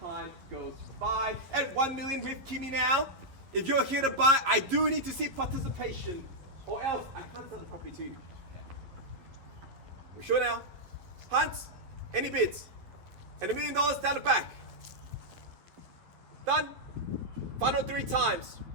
goes by. At 1 million with Kimmy now, if you're here to buy, I do need to see participation, or else I can't sell the property to you. We're sure now? Hans, any bids? And $1 million down the back. Done? Final 3 times.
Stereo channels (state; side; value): late; left; 11 ms